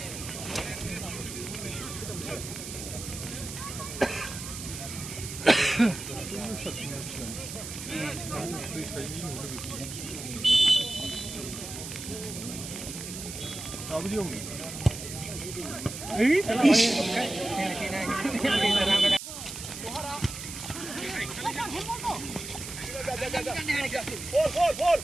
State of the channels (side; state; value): right; noise; hiss, 9 dB below the sound